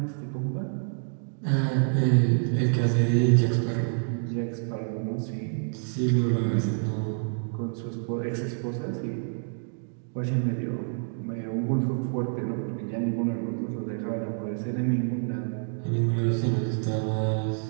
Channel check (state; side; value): silent; left; digital silence